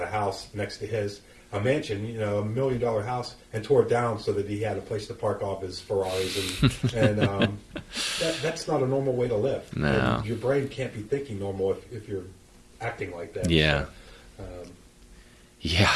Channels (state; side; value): identical; both; correlation 1.00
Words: a house next to a mansion, $1 million house, and tore it down so that he had a place to park off his Ferraris, and that's not a normal way to live. No. And your brain can't be thinking normal if you're acting like that. Yeah. So, yeah.